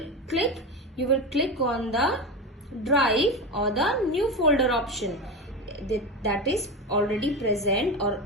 click? You will click on the drive or the new folder option that is already present or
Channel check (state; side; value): normal; both; correlation 0.20